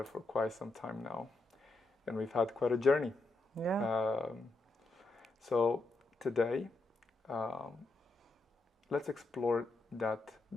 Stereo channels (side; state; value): right; quieter; 3.2 dB